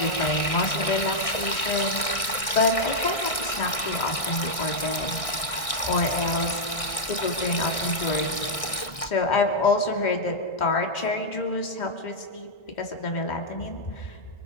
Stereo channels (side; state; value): right; late; 1.6 ms